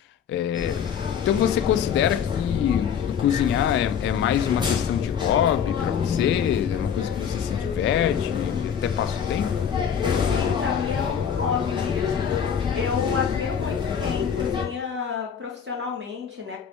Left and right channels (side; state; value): right; quieter; 7.9 dB